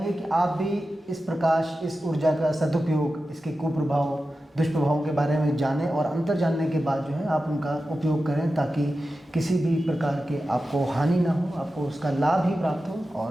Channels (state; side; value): normal; both; correlation 0.93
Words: कि आप भी इस प्रकाश, इस ऊर्जा का सदुपयोग, इसके कुप्रभाव, दुष्प्रभावों के बारे में जानें और अंतर जानने के बाद जो है आप उनका उपयोग करें ताकि किसी भी प्रकार के आपको हानि ना हो, आपको उसका लाभ ही प्राप्त हो।